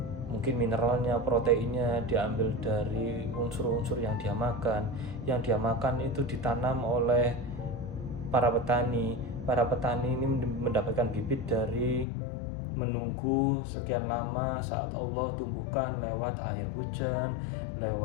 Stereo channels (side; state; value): right; drops out; at 12.1 s